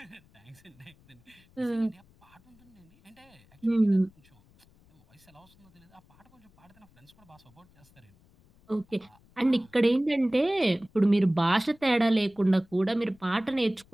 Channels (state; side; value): noise; left; rumble, 30 dB below the sound